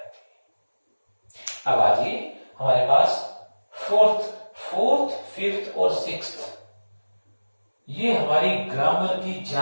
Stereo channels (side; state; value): both; inverted; correlation -1.00